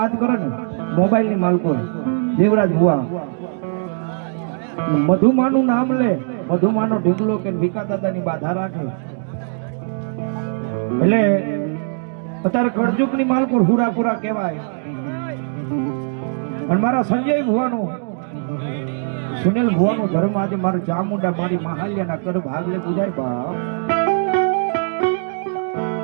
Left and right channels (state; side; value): silent; left; digital silence